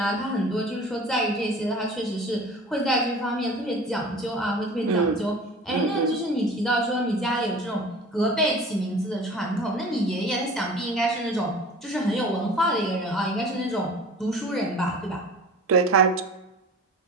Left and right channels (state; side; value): normal; both; correlation 0.42